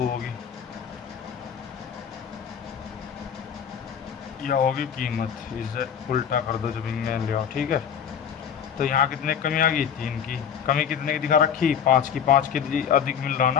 होगी या होगी कीमत, इसे उल्टा कर दो जब इनमें ले आओ। ठीक है, तो यहाँ कितने कमी आ गई? 3 की। कमी कितने की दिखा रखी? 5 की। 5 की अधिक मिल रहा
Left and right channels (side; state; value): right; quieter; 8.1 dB